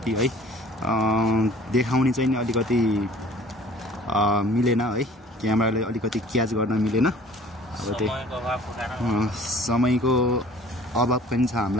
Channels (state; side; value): normal; both; correlation 0.50